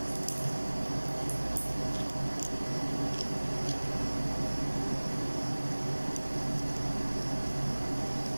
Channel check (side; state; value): both; inverted; correlation -1.00